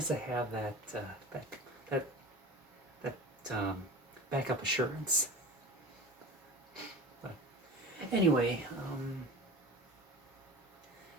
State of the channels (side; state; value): both; normal; correlation 0.34